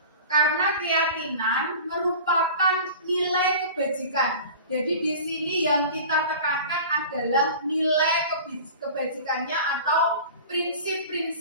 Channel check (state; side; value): inverted; both; correlation -0.38